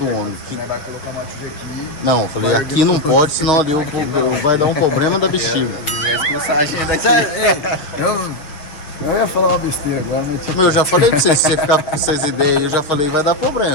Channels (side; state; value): right; late; 6.5 ms